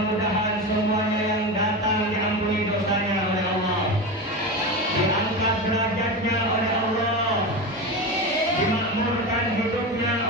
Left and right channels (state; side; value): normal; both; correlation 0.22